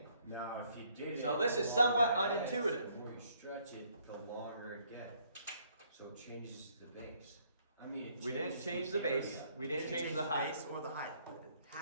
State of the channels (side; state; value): both; inverted; correlation -0.67